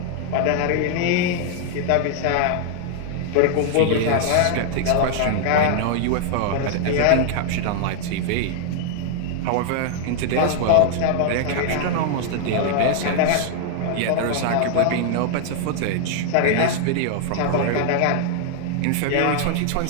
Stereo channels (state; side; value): different; both; correlation 0.00